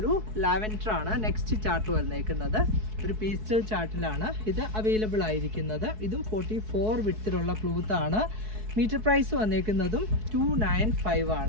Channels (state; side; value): late; left; 4.6 ms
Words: ലാവൻഡർ ആണ് നെക്സ്റ്റ് ചാർട്ട് വന്നേക്കുന്നത്. ഒരു പീസ്റ്റൽ ചാർട്ടിലാണ് ഇത് അവൈലബിൾ ആയിരിക്കുന്നത്. ഇതും 44 വിത്തിലുള്ള ക്ലോത്താണ്. മീറ്റർ പ്രൈസ് വന്നേക്കുന്നതും 295